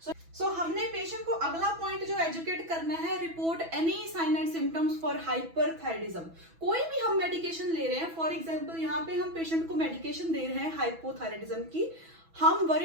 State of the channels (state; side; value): late; left; 6.1 ms